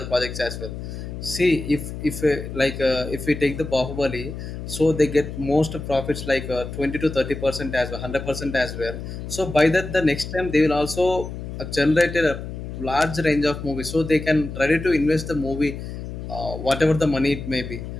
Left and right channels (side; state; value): left; noise; hum, 8 dB below the sound